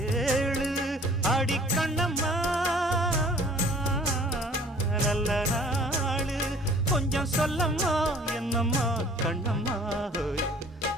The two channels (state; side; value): normal; both; correlation 0.51